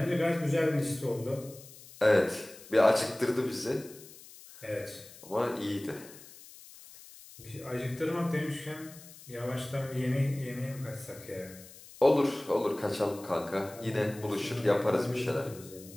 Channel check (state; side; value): noise; left; hiss, 19 dB below the sound